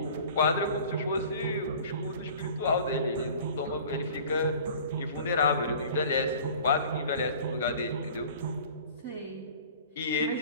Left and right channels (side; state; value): both; inverted; correlation -0.45